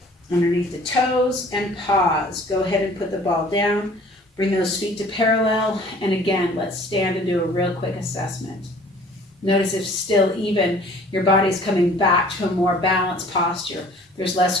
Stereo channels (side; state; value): both; normal; correlation 0.51